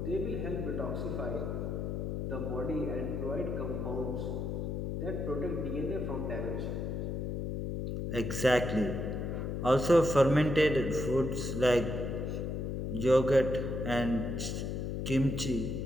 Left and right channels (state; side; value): noise; left; hum, 2 dB below the sound